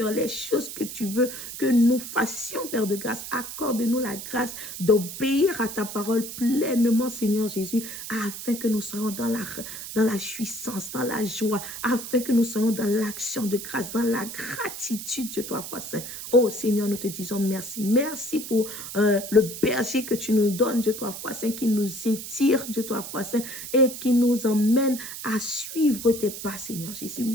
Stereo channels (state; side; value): noise; right; hiss, 9 dB below the sound